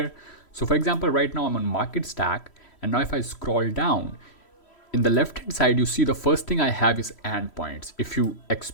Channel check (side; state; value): right; late; 3.1 ms